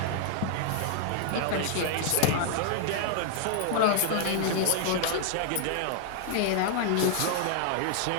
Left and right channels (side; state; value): both; different; correlation 0.00